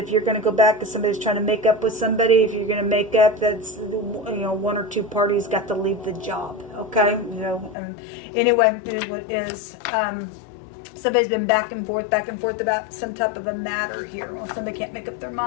if you're going to go back because somebody's trying to make up with somebody, if you're going to make up, that's, you know, one or two parties got to leave the job. Okay, you know. Anyway, it is what it is. Somebody's been back and forth about some type of a matter here. Well, if somebody can't make up their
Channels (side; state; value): right; drops out; at 7.8 s